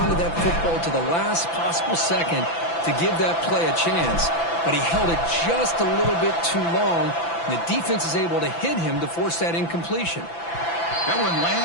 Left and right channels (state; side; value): late; right; 5.9 ms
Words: to that football to the last possible second to give that play a chance. But he held it just a little bit too long, and the defense is able to hit him to force that incompletion. That one